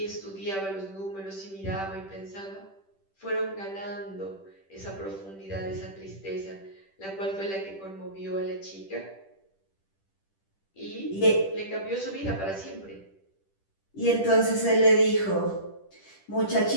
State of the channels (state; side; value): late; right; 10 ms